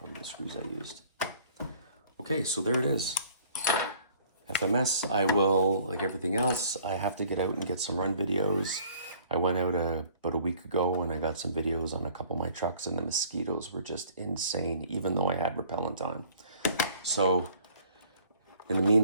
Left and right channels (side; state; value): both; inverted; correlation -0.55